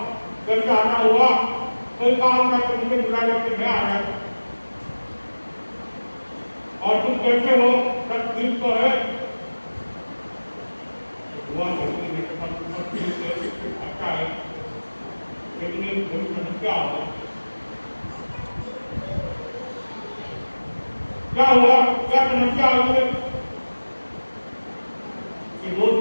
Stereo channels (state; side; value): inverted; both; correlation -1.00